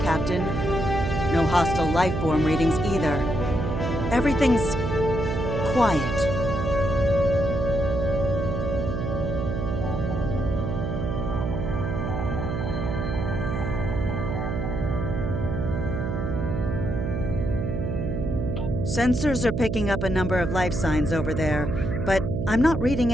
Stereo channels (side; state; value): right; noise; hum, 2 dB below the sound